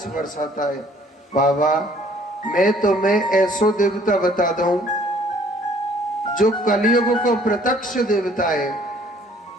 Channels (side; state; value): both; normal; correlation 0.58